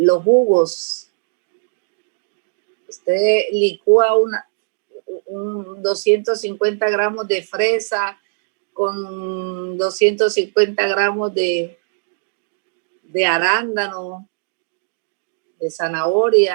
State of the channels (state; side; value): silent; left; digital silence